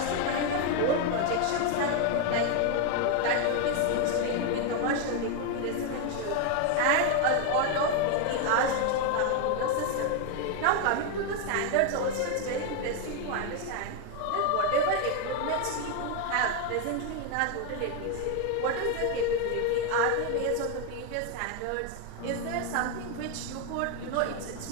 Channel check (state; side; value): different; both; correlation 0.01